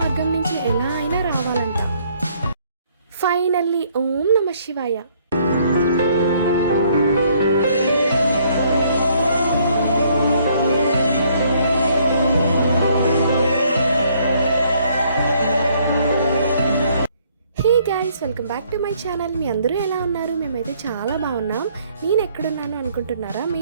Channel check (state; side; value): inverted; both; correlation -0.65